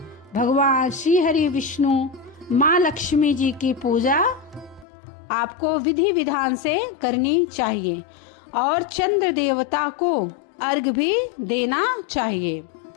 भगवान श्री हरि विष्णु, माँ लक्ष्मी जी की पूजा आपको विधि विधान से करनी चाहिए और चंद्र देवता को अर्घ भी देना चाहिए।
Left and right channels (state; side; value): drops out; right; at 4.9 s